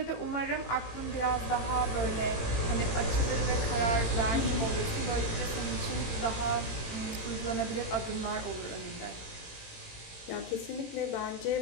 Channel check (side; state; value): right; late; 18 ms